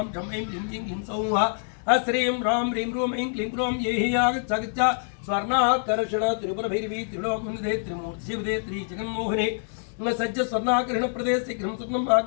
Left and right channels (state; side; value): silent; right; 61 dB below the other